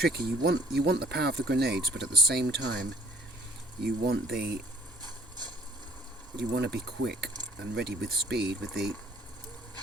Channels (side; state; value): both; normal; correlation 0.58